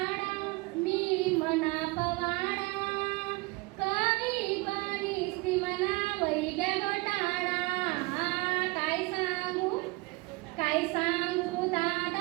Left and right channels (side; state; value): left; quieter; 24.5 dB